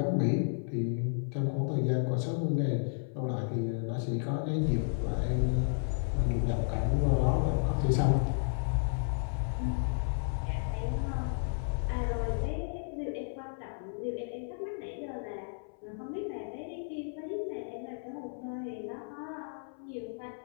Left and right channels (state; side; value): silent; right; 56 dB below the other